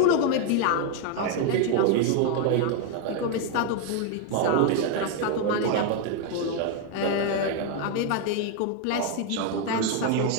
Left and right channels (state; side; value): different; both; correlation 0.01